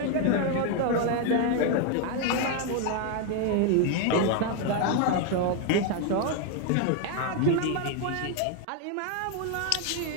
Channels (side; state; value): both; different; correlation 0.01